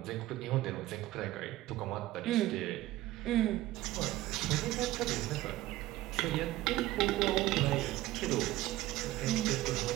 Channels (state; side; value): quieter; left; 16.3 dB